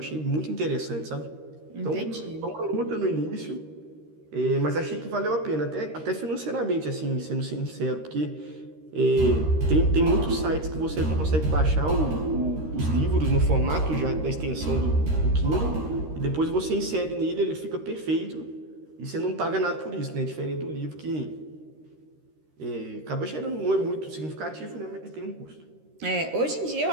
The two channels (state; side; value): late; left; 13 ms